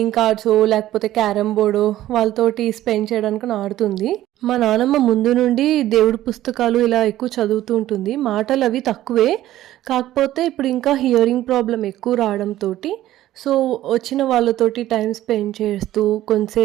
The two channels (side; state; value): left; quieter; 14.1 dB